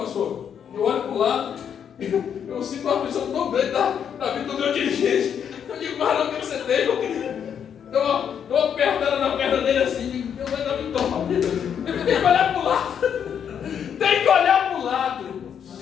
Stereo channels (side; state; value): right; quieter; 8.2 dB